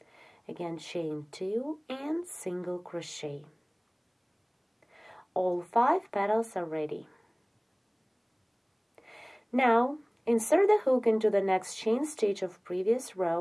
again chain 2 and single crochet. All 5 petals are ready. Now insert the hook into the next chain stitch of previous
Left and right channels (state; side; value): identical; both; correlation 1.00